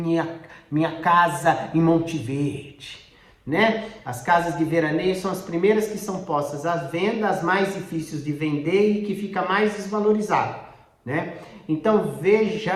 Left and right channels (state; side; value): identical; both; correlation 1.00